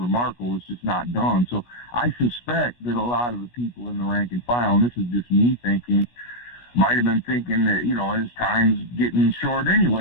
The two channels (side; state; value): right; late; 17 ms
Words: It's just not done. So I suspect that a lot of the people in the rank and file, and this is just me thinking, might have been thinking that, his time's getting short